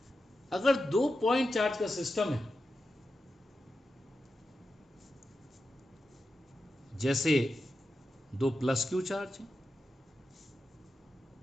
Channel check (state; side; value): normal; both; correlation 0.90